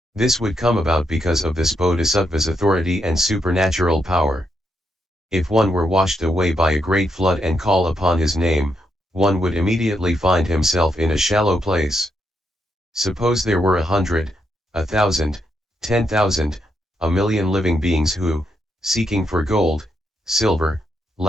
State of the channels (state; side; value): normal; both; correlation 0.80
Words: This would come about because of this Bodhisattva's authority and supernatural power. If one were washed away by a great flood and call upon his name, one would immediately find himself in a shallow place. Suppose there were 100, 1,000, 10,000, a million living beings who, seeking for gold, silver,